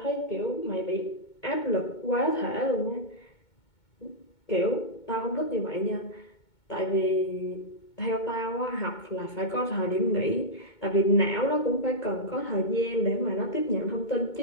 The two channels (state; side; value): late; right; 2.2 ms